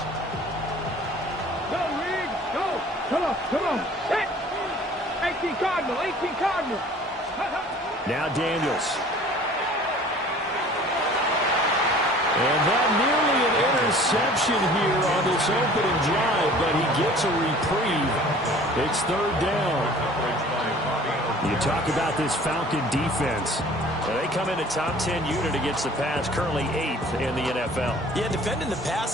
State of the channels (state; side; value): normal; both; correlation 0.49